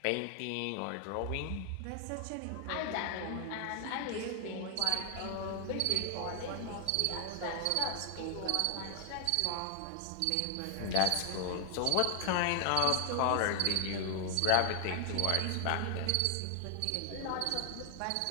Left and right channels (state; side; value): different; both; correlation 0.00